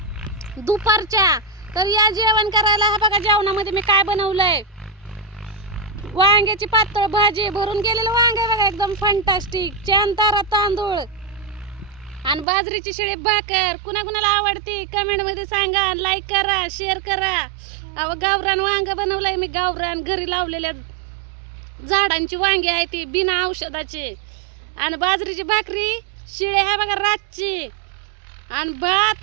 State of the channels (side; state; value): left; drops out; at 12.5 s